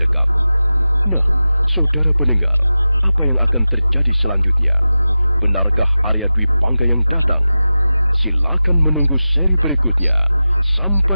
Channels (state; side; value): inverted; both; correlation -0.95